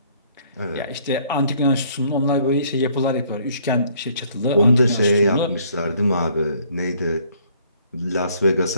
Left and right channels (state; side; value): inverted; both; correlation -0.62